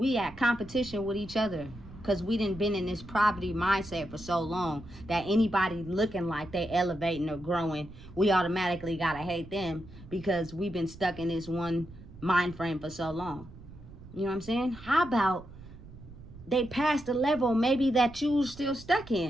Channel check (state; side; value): noise; right; rumble, 17 dB below the sound